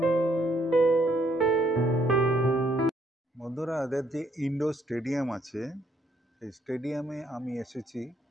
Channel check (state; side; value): normal; both; correlation 0.69